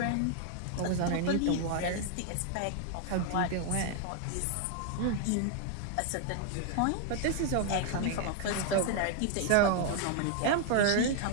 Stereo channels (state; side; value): different; both; correlation 0.00